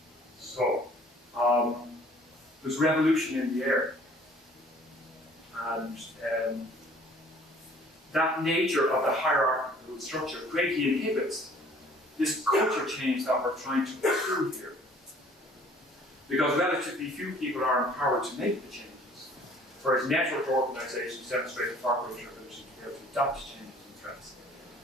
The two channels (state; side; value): normal; both; correlation 0.54